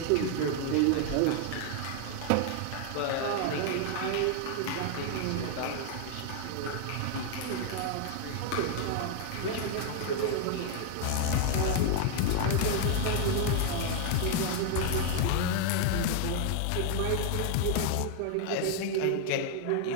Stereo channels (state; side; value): different; both; correlation 0.00